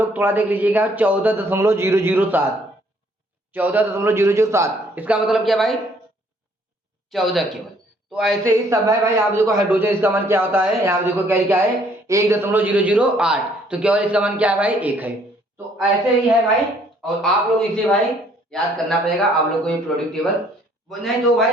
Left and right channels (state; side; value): normal; both; correlation 0.63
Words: थोड़ा देख लीजिएगा 14.007, 14.007, इसका मतलब क्या भाई 14 केवल। तो ऐसे ही सब है भाई, आप देखो हाइड्रोजन इसका मान क्या होता है, यहाँ देखो क्या है 1.008, तो केवल इसका मान क्या है भाई 1 है। तो ऐसे ही है भाई, और आप लोग इसे भाई याद करना पड़ेगा आप लोग को ये प्रोडक्ट टेबल, नहीं तो